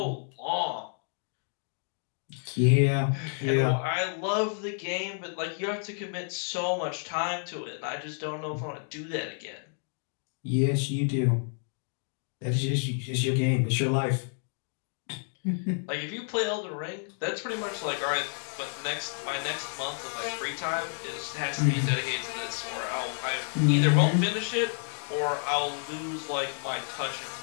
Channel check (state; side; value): silent; right; 58 dB below the other